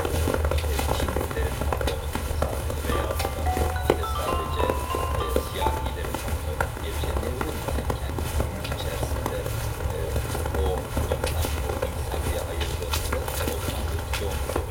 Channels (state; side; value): identical; both; correlation 1.00